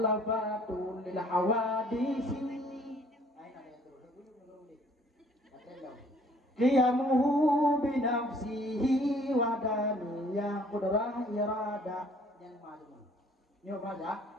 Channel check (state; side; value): normal; both; correlation 0.58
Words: lil hawadisi. Qiyamuhu bi nafsihi wa daniyah qudrah irada yang majmun. Nyo